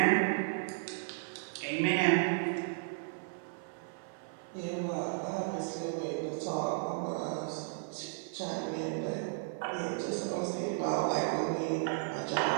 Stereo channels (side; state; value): left; silent; 55 dB below the other